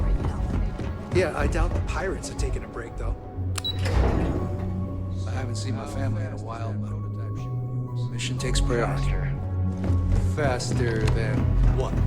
now. Yeah, I doubt the pirates are taking a break, though. I haven't seen my family in a while, but mission takes priority. Faster than what?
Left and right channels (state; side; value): identical; both; correlation 1.00